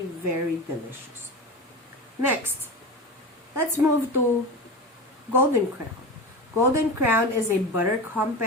very delicious. Next, let's move to Golden Crown. Golden Crown is a butter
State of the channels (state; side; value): normal; both; correlation 0.26